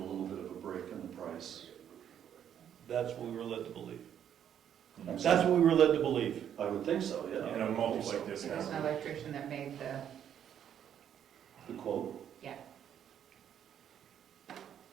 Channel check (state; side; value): quieter; left; 9.4 dB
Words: little bit of a break in the price. That's what we were led to believe. I'm That's sorry. what we were led to believe. I would think so, yeah. And a multi like this There's has. an electrician that made The quote. yeah.